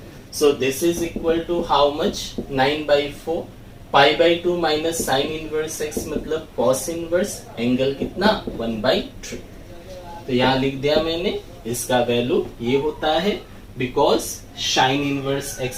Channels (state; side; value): identical; both; correlation 1.00